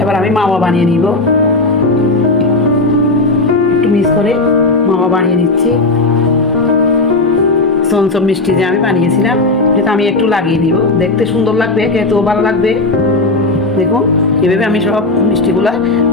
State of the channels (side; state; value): right; quieter; 3.1 dB